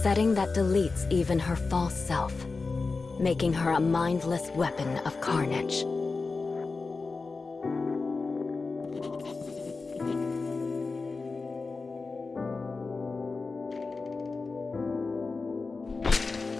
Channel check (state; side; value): quieter; right; 4.1 dB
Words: that deletes even her false self, making her a mindless weapon of carnage.